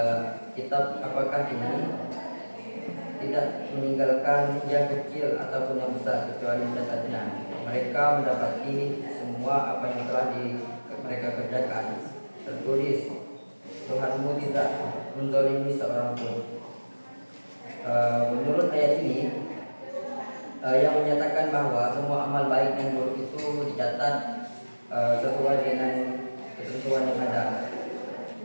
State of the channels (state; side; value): inverted; both; correlation -1.00